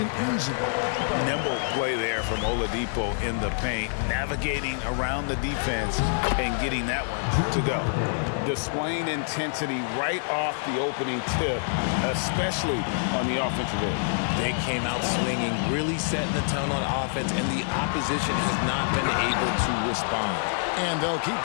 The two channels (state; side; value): silent; right; digital silence